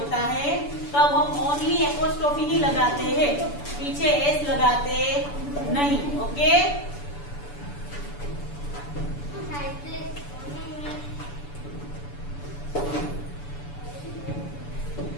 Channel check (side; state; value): right; late; 6.9 ms